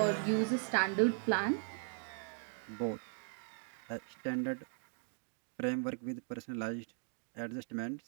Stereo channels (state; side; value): silent; left; 52 dB below the other